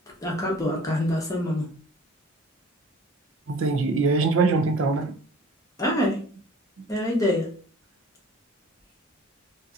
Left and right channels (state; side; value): normal; both; correlation 0.47